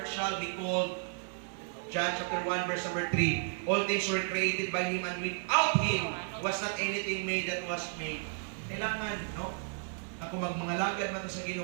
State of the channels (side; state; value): left; silent; 56 dB below the other